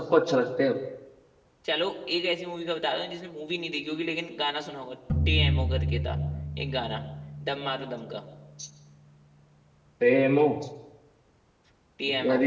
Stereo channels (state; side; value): identical; both; correlation 1.00